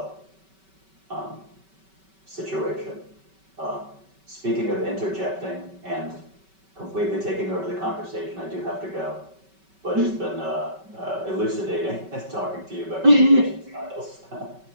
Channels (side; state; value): left; late; 5.2 ms